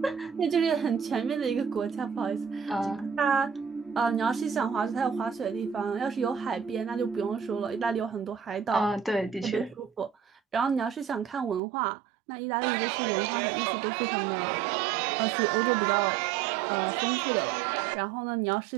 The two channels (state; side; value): drops out; left; at 11.6 s